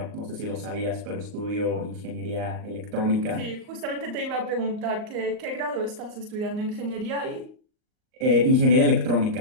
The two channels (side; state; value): left; late; 38 ms